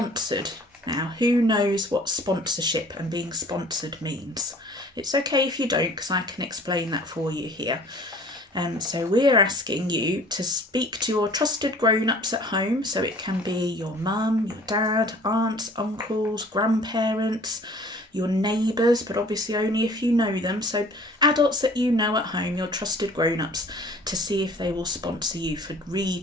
Now, who knows what sponsorship and being sponsored means? It's okay if you don't, because I can explain that for you here. So we're asking you to speak to your trusted grown-ups at home. So it can be your mum, your dad, aunts, uncles, grandparents, your neighbours, but obviously only if you know them. So adults that you know at home, your trusted grown-ups, to see if they will sponsor you for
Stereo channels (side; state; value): both; normal; correlation 0.50